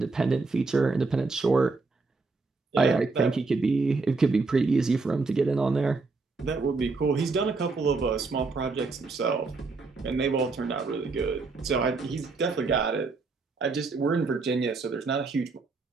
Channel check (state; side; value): quieter; left; 4.0 dB